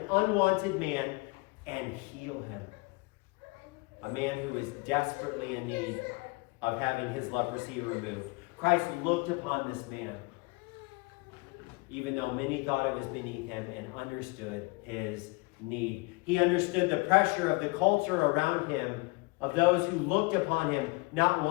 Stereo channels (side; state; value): right; quieter; 27.3 dB